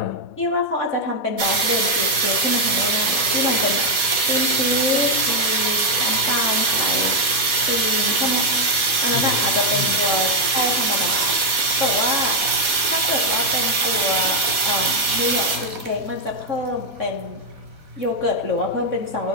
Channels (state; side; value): late; right; 4.1 ms